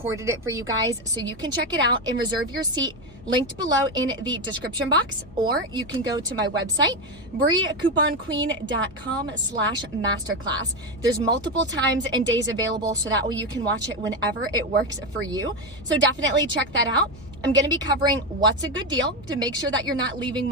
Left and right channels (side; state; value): both; normal; correlation 0.12